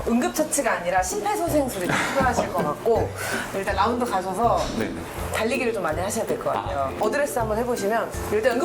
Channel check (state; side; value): identical; both; correlation 1.00